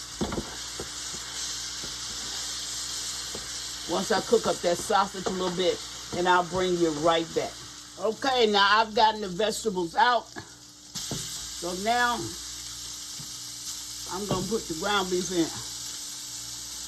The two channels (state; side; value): identical; both; correlation 1.00